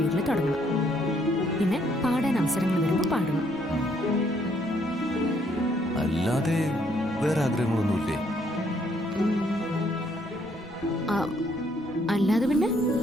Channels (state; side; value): normal; both; correlation 0.69